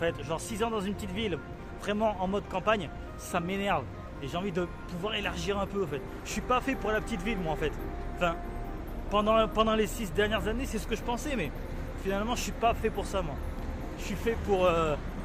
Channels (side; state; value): both; identical; correlation 1.00